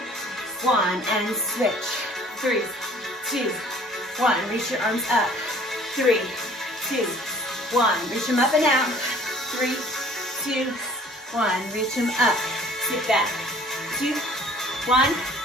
1, and switch. 3, 2, 1. Reach your arms up. 3, 2, 1. Reach them up and out. 3, 2, 1. Reach them up. Sit back. 2, 1.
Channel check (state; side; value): normal; both; correlation 0.53